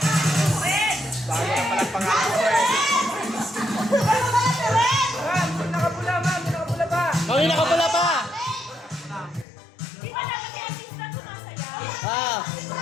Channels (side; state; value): right; drops out; at 9.5 s